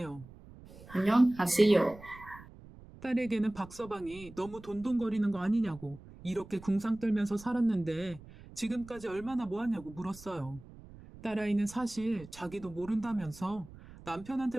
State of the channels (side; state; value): right; noise; rumble, 18 dB below the sound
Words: 안녕하세요. 딸에게는 박서방이 너무 돈돈거리는 거 아니냐고 이렇게 궁상 떨면서 살았는데 지금까지 얼마나 모았냐고 물었어요. 딸아이는 사실 자기도 모른다면서